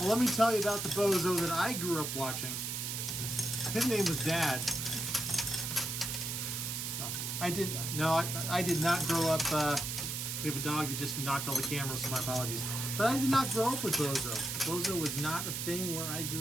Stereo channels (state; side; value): noise; right; hiss, 3 dB below the sound